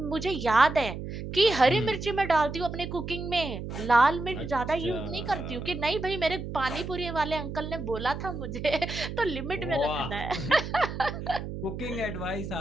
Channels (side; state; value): right; noise; hum, 7 dB below the sound